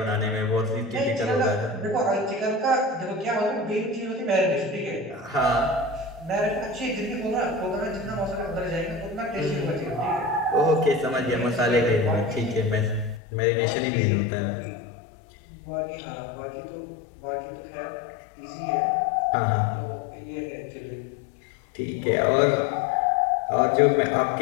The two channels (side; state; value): right; drops out; at 13.2 s